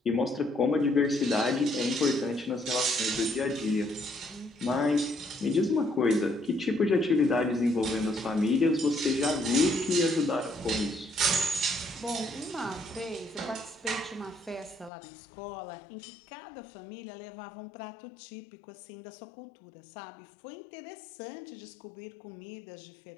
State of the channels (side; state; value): right; drops out; at 14.9 s